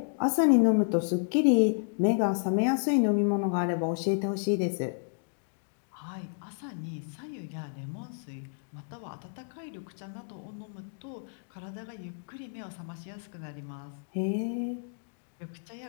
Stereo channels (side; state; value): right; silent; digital silence